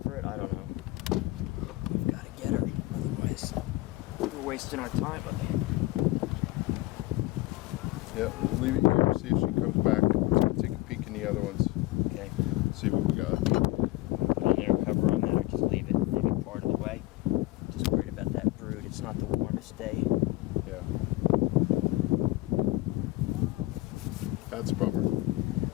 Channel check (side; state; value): right; quieter; 18.7 dB